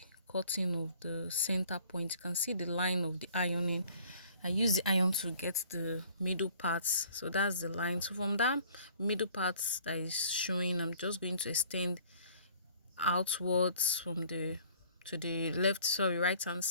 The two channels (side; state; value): both; inverted; correlation -0.55